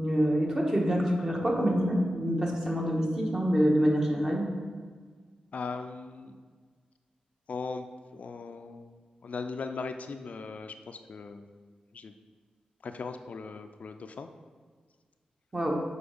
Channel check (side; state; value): both; normal; correlation 0.92